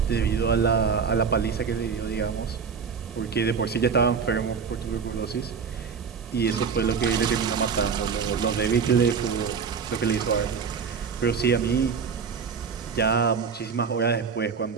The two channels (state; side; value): quieter; left; 6.1 dB